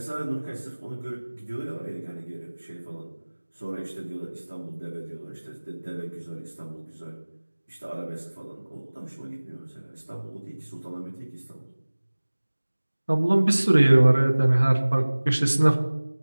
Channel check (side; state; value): both; inverted; correlation -1.00